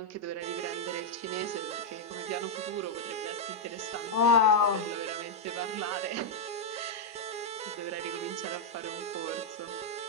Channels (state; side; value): normal; both; correlation -0.03